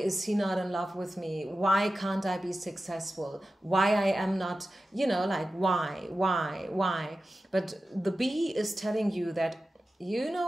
he not in love with me? Why can't I be successful? Why I am not, you know, like, why? But the bee is telling you that, you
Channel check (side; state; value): both; normal; correlation 0.94